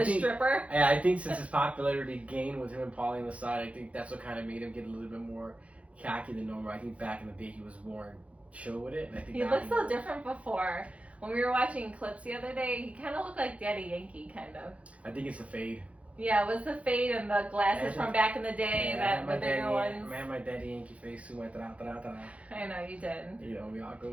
the stripper. Yeah, I think since his popularity gained with him and Paulie on the side, I think that's what kind of made him get a little bit more cocky than normal. I think back in the day he was more chill with it, and I think he looked so different before. When we were watching clips the other day, he kind of looked like Daddy Yankee, kind of. I think it's a fade. Yeah, it was the fade and the glasses from back in the day, the bigger ones. Man, my Daddy Yankee face too went I know, you did. We all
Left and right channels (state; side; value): late; left; 0.064 ms